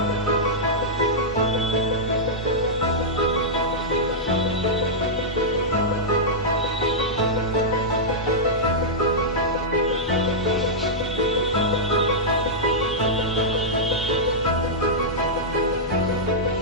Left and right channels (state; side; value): normal; both; correlation -0.09